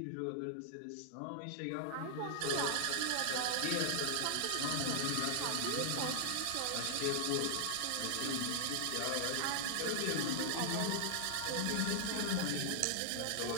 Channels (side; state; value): both; different; correlation -0.01